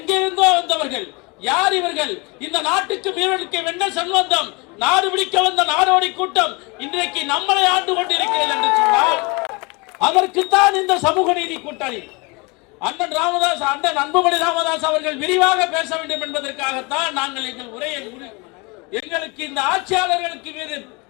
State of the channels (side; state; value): right; quieter; 28.3 dB